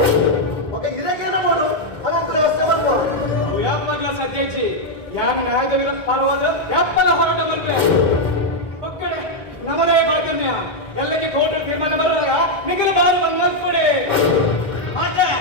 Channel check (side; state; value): right; late; 1.3 ms